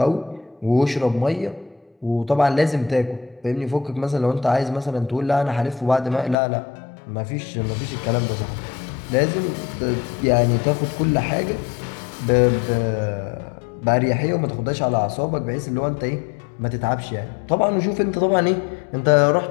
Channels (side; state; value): right; drops out; at 6.4 s